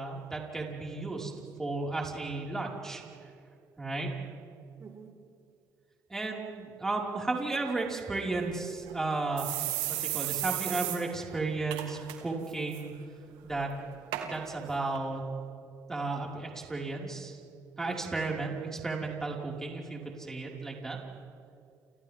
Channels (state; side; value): quieter; left; 3.7 dB